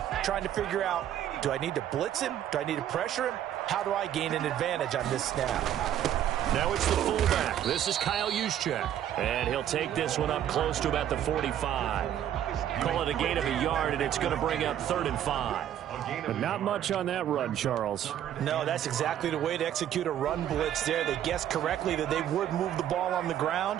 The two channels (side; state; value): left; quieter; 10.9 dB